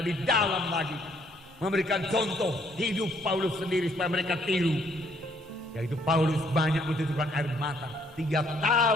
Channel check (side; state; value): both; normal; correlation 0.66